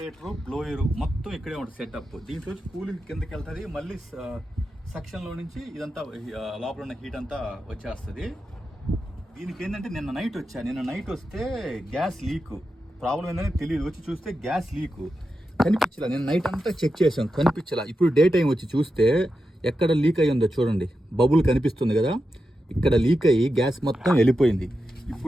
బ్లోయరు మొత్తం ఇక్కడే ఉంటుంది సెటప్. దీంట్లో కూలింగ్ కిందకి వెళ్తుంది, మళ్ళీ సెక్షన్లో నుంచి ఇదంతా లోపల ఉన్న హీట్ అంతా వచ్చేస్తుంది. దీనికి ఏంటంటే నిన్న నైట్ వస్తే గ్యాస్ లీక్ ప్రాబ్లం ఏంటనే తెలియదు. వచ్చి చూస్తే గ్యాస్ లీక్ కనిపించలా. నేను నైట్ అంతా చెక్ చేసాం, కనిపించలా. ఇప్పుడు డే టైం వచ్చి చూస్తే ఎక్కడ లీక్ అయ్యి ఉందో చూడండి, బబుల్ కనిపిస్తుంది కదా, ఇక్కడ లీక్ అయ్యి గ్యాస్ మొత్తం వెళ్ళిపోయింది.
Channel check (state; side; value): normal; both; correlation 0.89